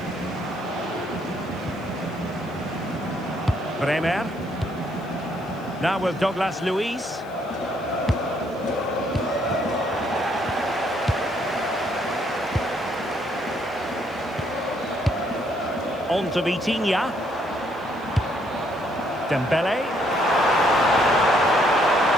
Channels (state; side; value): noise; left; hiss, 29 dB below the sound